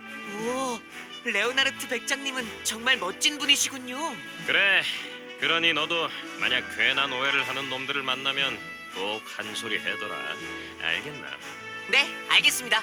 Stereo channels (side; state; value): both; identical; correlation 1.00